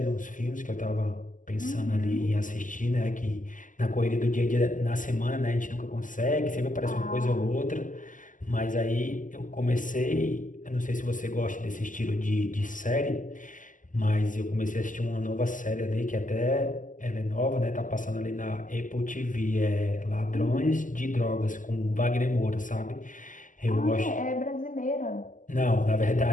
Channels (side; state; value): right; late; 0.38 ms